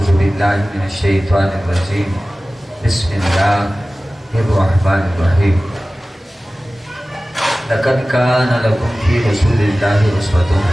بالله من الشيطان الرجيم بسم الله الرحمن الرحيم لقد كان لكم في رسول الله أسوة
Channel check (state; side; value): normal; both; correlation 0.97